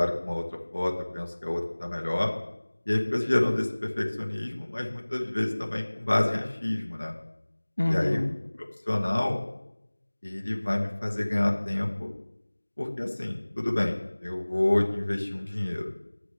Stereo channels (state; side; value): inverted; both; correlation -1.00